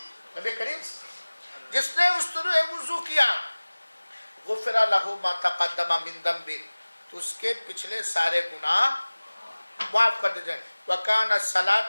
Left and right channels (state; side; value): inverted; both; correlation -1.00